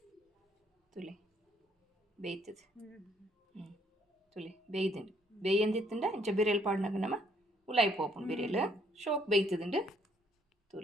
ತುಲೆ ಬೇಯ್ತದ ತುಲೆ ಬೇಯ್ದಂಡು ಬೇಯಂದಿತ್ತಂಡ ಇಂಚ ಬಿರಿಯಲ್ ಪಾಡ್ನಾಗ ನಮ್ಮ ಉಲಾಯಿ ಪೋಪುಂಡು ಬಿರಿಯಲ್ ಶೋಕ್ ಬೇಯ್ತದಂಡು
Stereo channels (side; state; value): both; normal; correlation 0.67